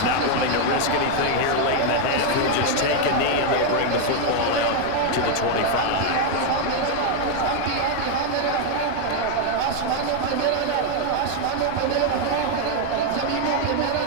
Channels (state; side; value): different; both; correlation 0.01